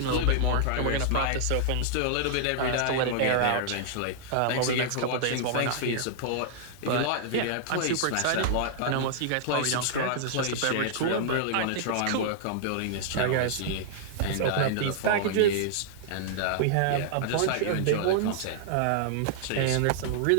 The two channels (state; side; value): different; both; correlation -0.01